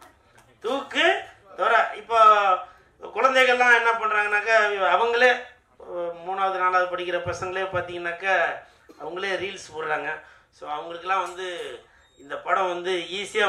தூக்கு துறை. இப்போ குழந்தைகள்லாம் என்ன பண்ணுறாங்கனாக்கா, அவங்களே 3வது 4வது படிக்கிற பசங்களே பார்த்தீங்கன்னாக்கா அவங்களே ரீல்ஸ் போடுறாங்க. ஸோ அவங்களுக்கெல்லாம் வந்து இந்த படம் வந்து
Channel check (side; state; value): both; identical; correlation 1.00